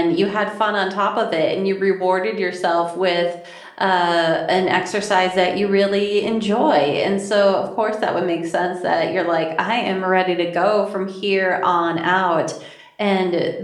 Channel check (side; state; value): both; identical; correlation 1.00